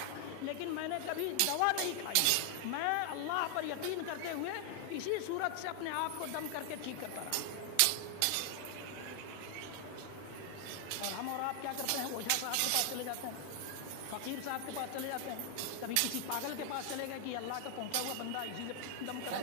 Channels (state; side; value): different; both; correlation 0.00